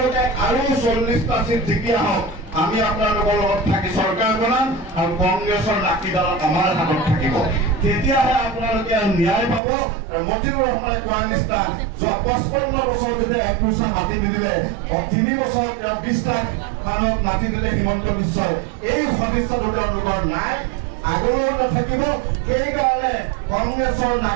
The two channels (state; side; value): drops out; left; at 9.6 s